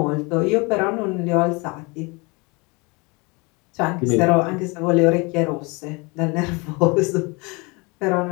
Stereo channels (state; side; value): quieter; right; 28.2 dB